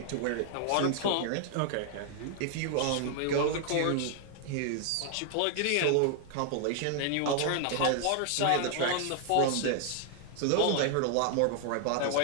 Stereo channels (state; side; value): different; both; correlation 0.00